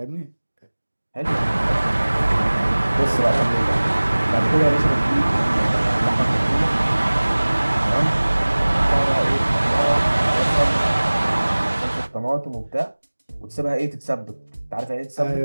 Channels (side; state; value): both; inverted; correlation -1.00